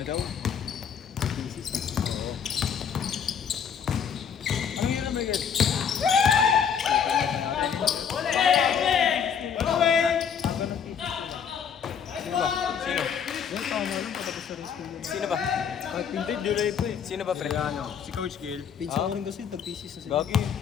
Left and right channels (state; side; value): quieter; right; 7.4 dB